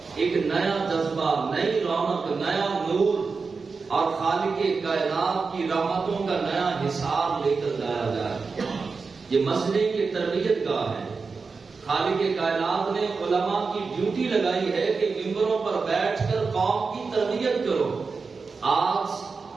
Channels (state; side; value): quieter; left; 4.6 dB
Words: ایک نیا جذبہ، نئی رونق، نیا نور اور خالق کائنات کی رحمتوں کا نیا حساب لے کر جایا جائے۔ یہ مسجد کی تربیت گاہ ہے۔ خالق کائنات نے علماء کی ڈیوٹی لگائی ہے کہ ممبروں پر بیٹھ کر قوم کی تربیت کرو۔ آج